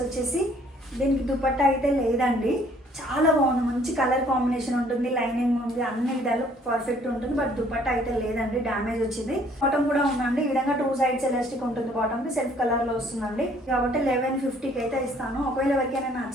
వచ్చేసి దీనికి దుపట్టా అయితే లేదండి, చాలా బాగుంది, మంచి కలర్ కాంబినేషన్ ఉంటుంది, లైనింగ్ ఉంది, అన్ని విధాలు పర్ఫెక్ట్ ఉంటుంది. బట్ దుపట్టా అయితే లేదండి, డ్యామేజ్ వచ్చింది. బాటమ్ కూడా ఉందండి, ఈ విధంగా 2 సైడ్స్ ఎలాస్టిక్ ఉంటుంది. బాటమ్కి సెల్ఫ్ కలర్లో వస్తుందండి. కాబట్టి 1150కి అయితే ఇస్తాను. ఒకవేళ ఎవరికైనా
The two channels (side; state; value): both; normal; correlation 0.60